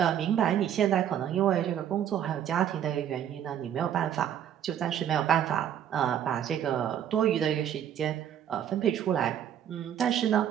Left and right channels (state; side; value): quieter; left; 9.9 dB